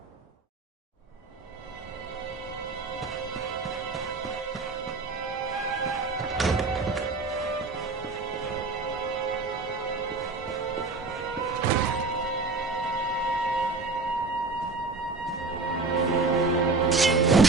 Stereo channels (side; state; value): left; quieter; 3.8 dB